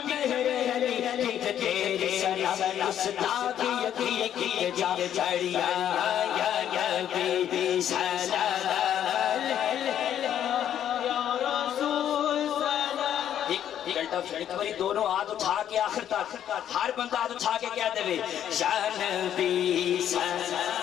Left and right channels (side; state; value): right; quieter; 10.2 dB